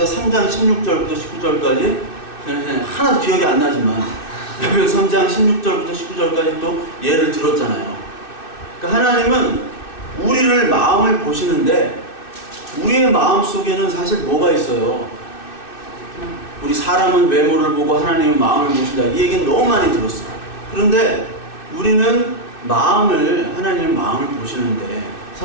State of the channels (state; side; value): late; right; 2.6 ms